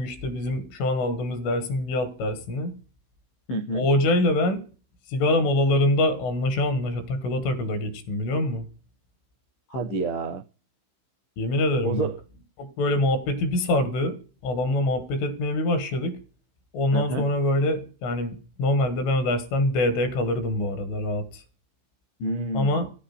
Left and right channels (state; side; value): late; right; 16 ms